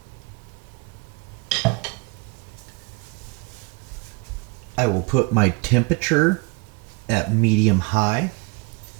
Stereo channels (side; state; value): left; quieter; 28.5 dB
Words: I will put my temperature at medium high,